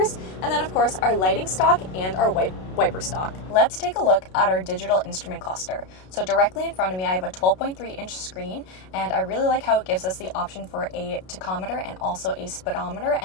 and then of course our lighting stock and our wiper stock. Let's take a look at our digital instrument cluster. So directly in front of me, I have a 12.3-inch screen, and I really like how it gives us the option for a tachometer and also a speedometer,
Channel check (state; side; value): late; right; 32 ms